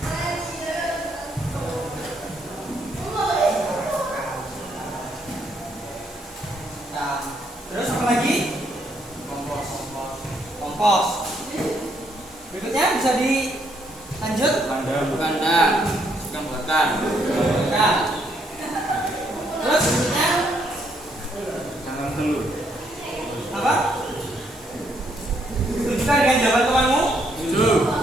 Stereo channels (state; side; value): normal; both; correlation 0.72